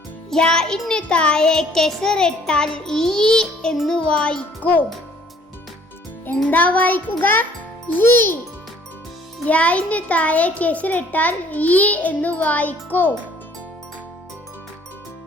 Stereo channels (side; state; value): both; normal; correlation 0.58